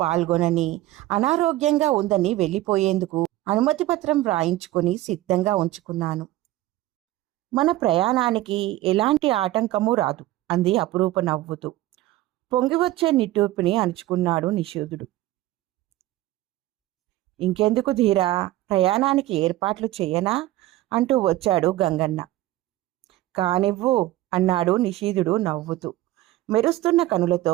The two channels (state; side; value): quieter; left; 16.0 dB